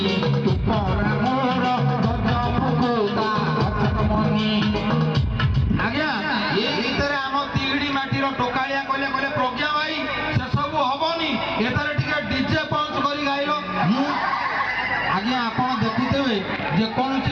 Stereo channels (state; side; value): identical; both; correlation 1.00